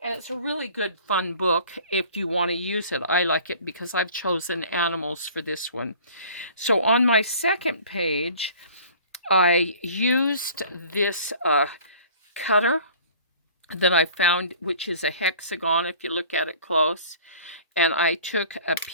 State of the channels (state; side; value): inverted; both; correlation -0.48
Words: it's a really good, fun book if you want to use it. I like it because I've chosen animals for this one. So on my second page, I used this cutter that I found, which is a hexagon if you look at it close. And I took a